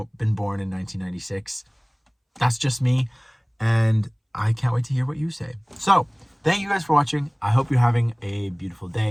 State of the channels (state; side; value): identical; both; correlation 1.00